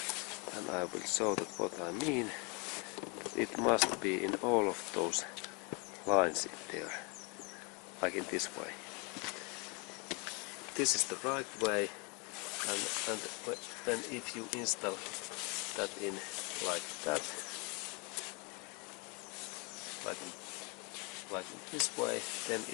I will show that what I mean. It must be in all of those lines in there, like in this way. This is the right way, and when if you install that in like that, like in this way, then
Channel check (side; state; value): right; quieter; 31.5 dB